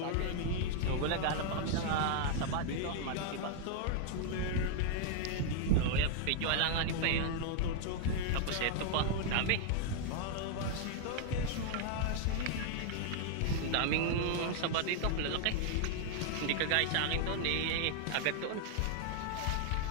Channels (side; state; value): both; different; correlation 0.00